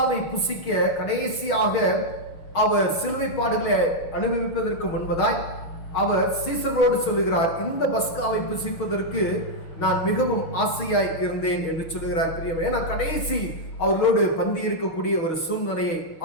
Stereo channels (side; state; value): right; late; 6.3 ms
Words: புசிக்க கடைசியாக அவர் சிலுவை பாடுகளை அனுபவிப்பதற்கு முன்பதாய் அவர் சீசர்களோடு சொல்லுகிறார், இந்த பஸ்காவை புசிப்பதற்கு நான் மிகவும் ஆசையாய் இருந்தேன் என்று சொல்லுகிறார். பிரியமே, ஏன்னா கடைசி அவர்களோடு பந்தி இருக்கக்கூடிய ஒரு சூழ்நிலையை